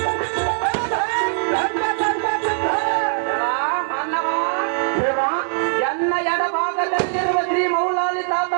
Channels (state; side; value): silent; left; digital silence